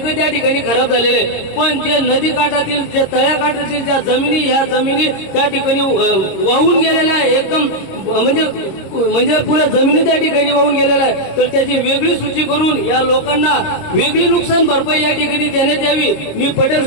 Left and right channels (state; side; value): late; right; 26 ms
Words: त्या ठिकाणी खराब झालेले, पण जे नदी काठातील जे तळ्याकाठातील ज्या जमिनी ह्या जमिनी त्या ठिकाणी वाहून गेलेल्या आहे, एकदम म्हणजे पुऱ्या जमिनी त्या ठिकाणी वाहून गेलेल्या आहे, तर त्याची वेगळी सूची करून या लोकांना वेगळी नुकसान भरपाई या ठिकाणी देण्यात यावी। मी पटेल